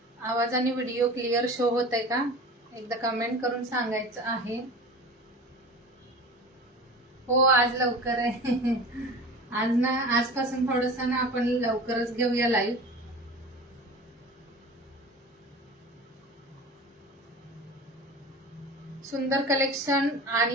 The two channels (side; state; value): both; normal; correlation 0.36